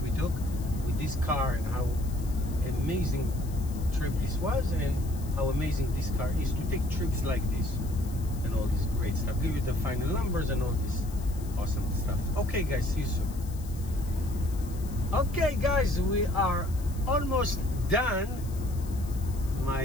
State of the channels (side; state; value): left; noise; hiss, 19 dB below the sound